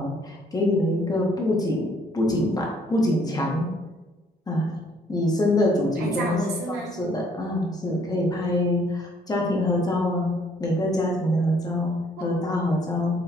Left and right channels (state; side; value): normal; both; correlation 0.64